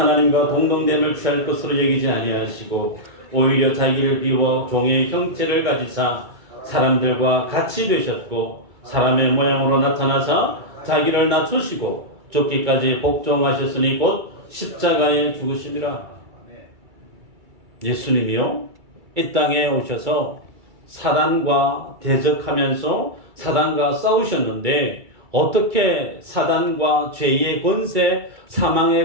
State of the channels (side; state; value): left; late; 2.3 ms